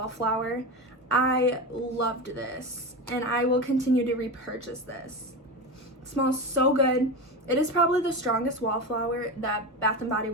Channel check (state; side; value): normal; both; correlation 0.22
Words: I loved this, and I will continue to repurchase this. It smells so good. It is probably the strongest Wallflower that Bath & Body